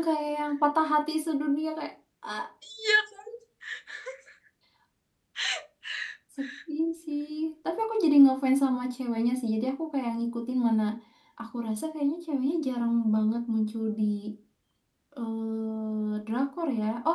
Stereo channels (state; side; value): identical; both; correlation 1.00